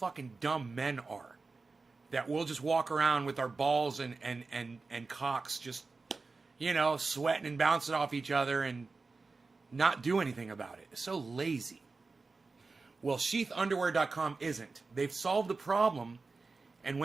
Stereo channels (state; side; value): quieter; left; 4.0 dB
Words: dumb men are. That we'll just walk around with our balls and cocks just, sweating and bouncing off each other and not do anything about it. It's so lazy. Well, sheathunderwear.com isn't. They've solved the problem. And